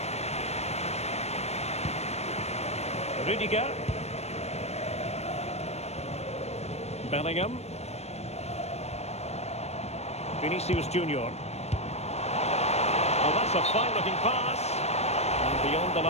Rudiger. Bellingham. Vinicius Junior. Oh, that's a fine-looking pass. And beyond the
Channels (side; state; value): right; late; 0.31 ms